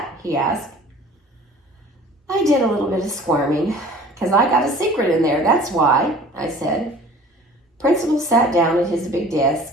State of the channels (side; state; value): both; normal; correlation 0.47